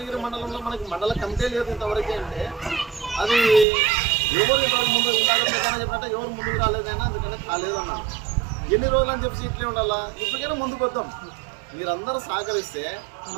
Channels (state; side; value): drops out; left; at 3.7 s